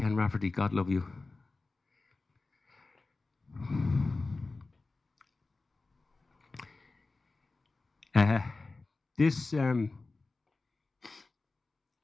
Rafferty, God love you.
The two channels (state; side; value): quieter; right; 3.6 dB